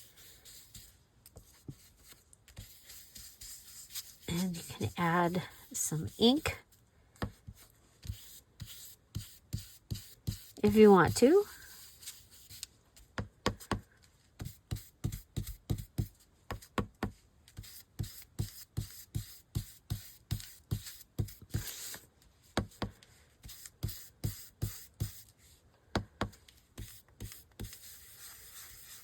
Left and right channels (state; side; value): identical; both; correlation 1.00